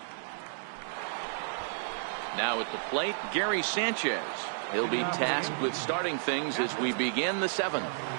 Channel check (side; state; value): left; silent; digital silence